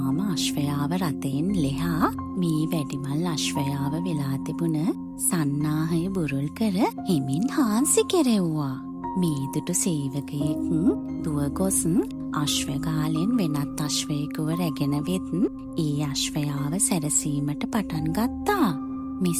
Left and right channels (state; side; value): identical; both; correlation 1.00